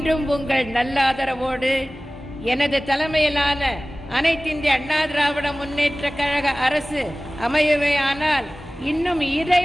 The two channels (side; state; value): both; normal; correlation 0.98